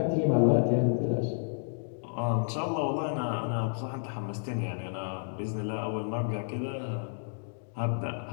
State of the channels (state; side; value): silent; right; digital silence